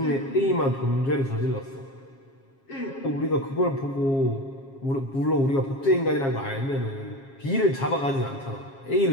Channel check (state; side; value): late; right; 7.4 ms